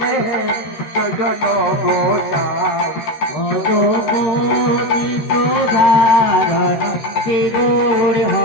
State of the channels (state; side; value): late; right; 13 ms